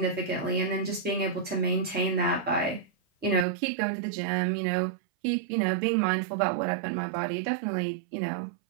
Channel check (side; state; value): left; drops out; at 3.5 s